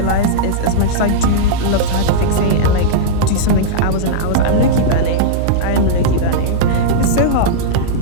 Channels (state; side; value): different; both; correlation -0.03